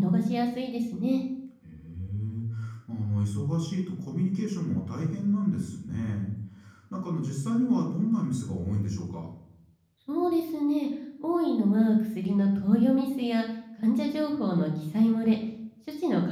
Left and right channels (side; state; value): both; identical; correlation 1.00